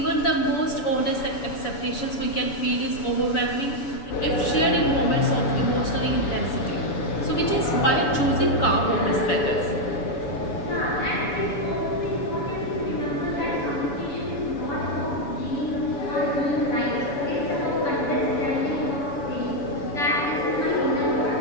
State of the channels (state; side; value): late; right; 7.0 ms